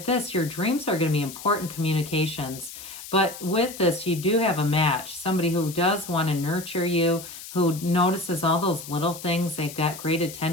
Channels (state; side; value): noise; left; hiss, 13 dB below the sound